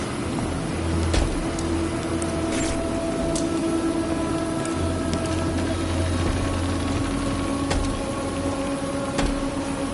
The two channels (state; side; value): identical; both; correlation 1.00